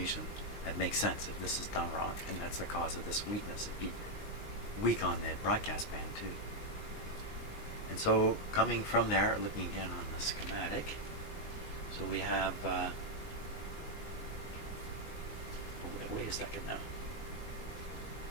that makes sense if this is done wrong, and that's the cause of this weakness. It'd be weak on the broadcast band too. And so coming from there, looking again on the schematic, so we have wait a second now.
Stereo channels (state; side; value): late; right; 19 ms